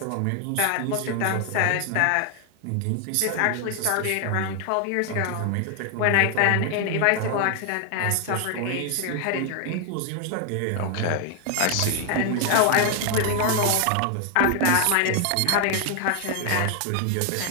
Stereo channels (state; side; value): different; both; correlation 0.01